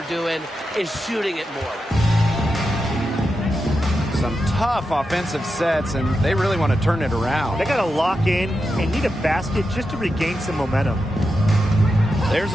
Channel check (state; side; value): normal; both; correlation 0.88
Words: doing is shooting it more. Some tough offensive sets, and they really want to turn it around. They got to lock in and need a basket just to regain some momentum. There's